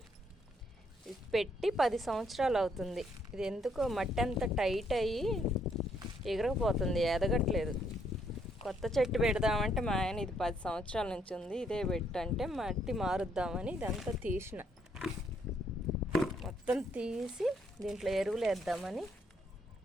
ఇది పెట్టి 10 సంవత్సరాలు అవుతుంది. ఇది ఎందుకో మట్టి అంత టైట్ అయ్యి ఎగరకపోతుంది, ఎదగట్లేదు. కొత్త చెట్టు పెడదామంటే మా ఆయన ఇది 10 సంవత్సరాల నుంచి ఉంది, ఇదే పెట్టంటే మట్టి మారుద్దామని ఇదంతా తీసిన. మొత్తం తీసి దీంట్లో ఎరువులు వేద్దామని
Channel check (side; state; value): both; normal; correlation 0.71